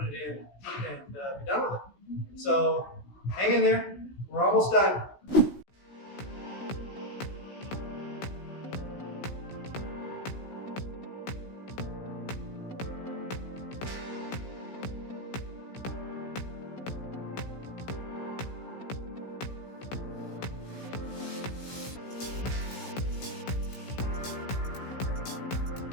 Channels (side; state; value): right; late; 16 ms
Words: it in, and be done with it. So hang in there. We're almost done.